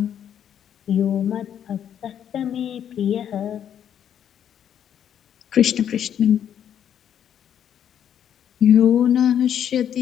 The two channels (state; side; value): quieter; right; 9.4 dB